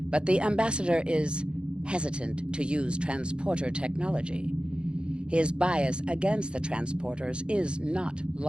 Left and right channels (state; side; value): late; left; 0.055 ms